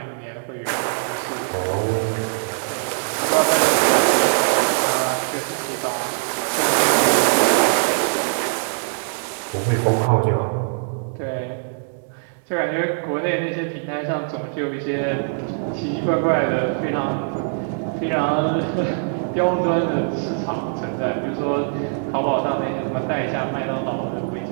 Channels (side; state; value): left; silent; digital silence